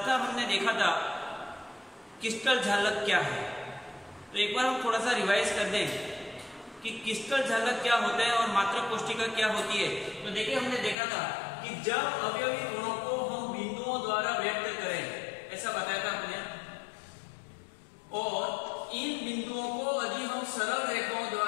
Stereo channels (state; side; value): drops out; right; at 11.0 s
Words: हमने देखा था क्रिस्टल जालक क्या है। तो एक बार हम थोड़ा सा रिवाइज कर दें कि क्रिस्टल जालक क्या होता है और मात्रक कोशिका क्या होती है। तो देखिए, हमने देखा था कि जब अवयवी गुणों को हम बिंदुओं द्वारा व्यक्त करें, ऐसा बताया था हमने, और इन बिंदुओं को यदि हम सरल रेखाओं